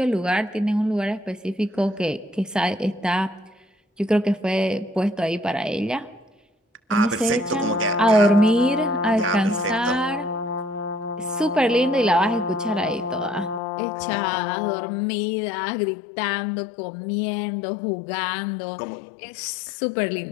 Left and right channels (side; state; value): right; drops out; at 13.6 s